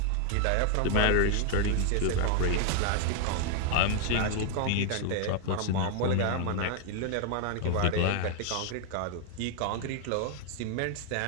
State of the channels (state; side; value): different; both; correlation 0.00